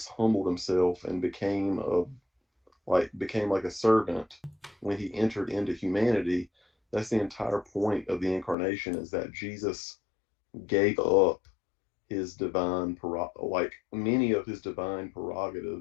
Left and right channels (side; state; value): right; drops out; at 8.6 s